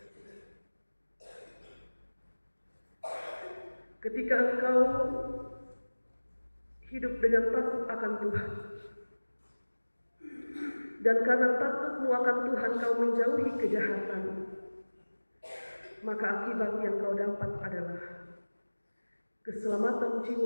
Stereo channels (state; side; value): inverted; both; correlation -1.00